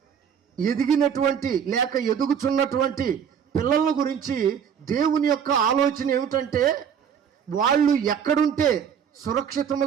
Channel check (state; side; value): quieter; left; 7.9 dB